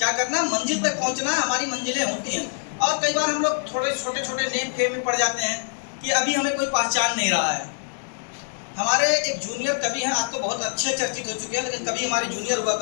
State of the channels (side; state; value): right; silent; 62 dB below the other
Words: करना है? मंजिल तक पहुंचना है। हमारी मंजिलें होती हैं, और कई बार हम लोग थोड़े छोटे छोटे नेम खेम में पड़ जाते हैं कि अभी हमें कोई पहचान नहीं रहा है। हमारे एक जूनियर कवि हैं, आज तो बहुत अच्छे चर्चित हो चुके हैं, लेकिन कभी हमारे जूनियर हुआ